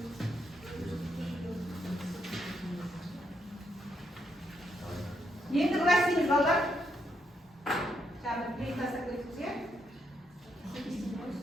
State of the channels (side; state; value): both; normal; correlation 0.78